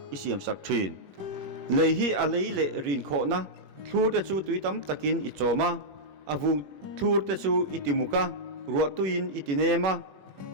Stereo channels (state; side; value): late; left; 21 ms